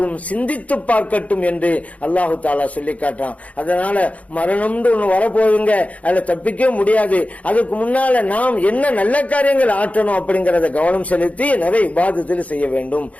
சிந்தித்து பார்க்கட்டும் என்று அல்லாஹு தஆலா சொல்லி காட்டுறான். அதனால மரணம்னு ஒண்ணு வரப்போகுதுங்க, அதுல தப்பிக்க முடியாது. அதுக்கு முன்னால நாம் என்ன நல்ல காரியங்கள் ஆற்றணும் அப்படிங்கறத கவனம் செலுத்தி நிறைய இபாதத்தில் செய்ய வேண்டும்.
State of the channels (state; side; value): late; right; 0.067 ms